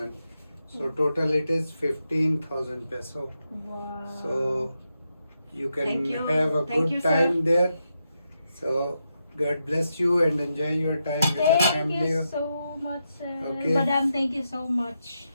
So total it is 15,000 peso. Wow. So you can Thank you. have a Thank good you, sir. time there. So God bless you and enjoy your time with the Thank family. you so much, sir. Okay. Madam, thank you so much.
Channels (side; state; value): both; inverted; correlation -0.84